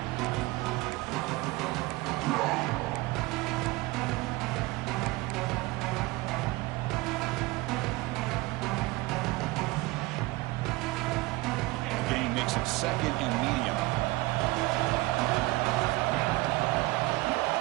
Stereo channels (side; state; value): left; quieter; 21.4 dB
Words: Makes it 2nd and medium.